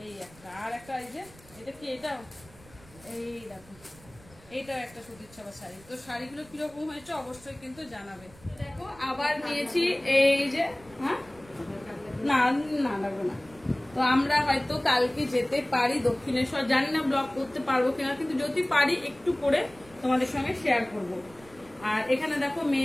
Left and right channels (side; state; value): right; noise; rumble, 24 dB below the sound